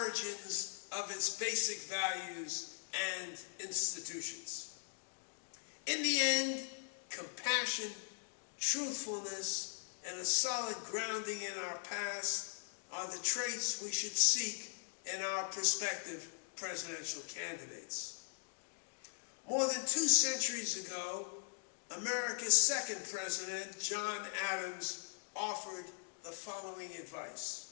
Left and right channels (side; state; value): right; silent; digital silence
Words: of its basic values and institutions? In the end, compassion, truthfulness, and a solid grounding in our past are the traits we should seek in our prospective presidential candidates. More than 2 centuries ago, America's second president, John Adams, offered the following